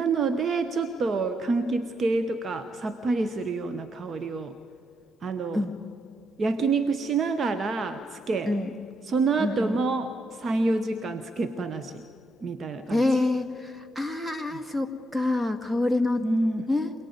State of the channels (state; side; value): normal; both; correlation 0.80